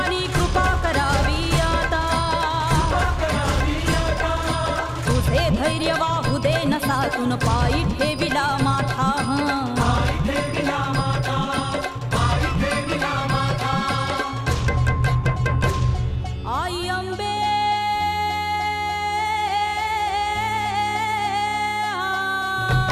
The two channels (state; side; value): identical; both; correlation 1.00